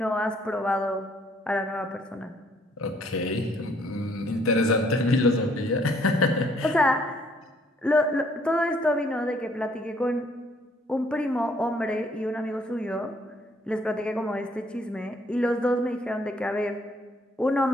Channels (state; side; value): normal; both; correlation 0.65